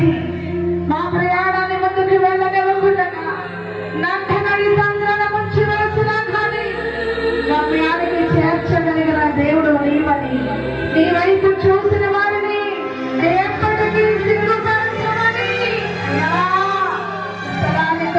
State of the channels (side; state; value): both; identical; correlation 1.00